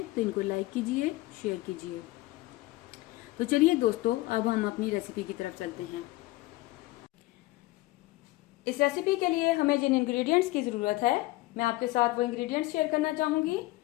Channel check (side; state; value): right; quieter; 19.3 dB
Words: तो इनको लाइक कीजिए, शेयर कीजिए। तो चलिए दोस्तों, अब हम अपनी रेसिपी की तरफ चलते हैं। इस रेसिपी के लिए हमें जिन इंग्रेडिएंट्स की ज़रूरत है, मैं आपके साथ वो इंग्रेडिएंट्स शेयर करना चाहूँगी।